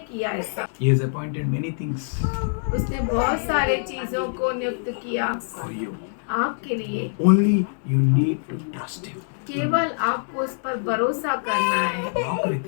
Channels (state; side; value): silent; right; digital silence